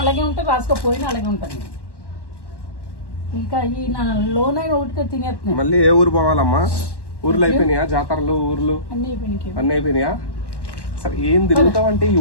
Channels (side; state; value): right; late; 1.1 ms